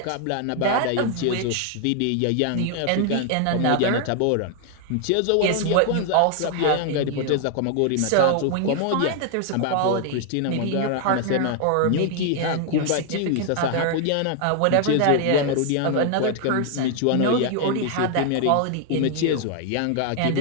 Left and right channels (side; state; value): both; different; correlation 0.00